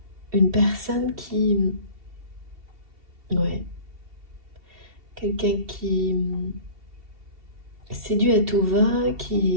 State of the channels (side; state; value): left; late; 2.7 ms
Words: Une personne qui... Ouais. Quelqu'un qui séduit à tout va,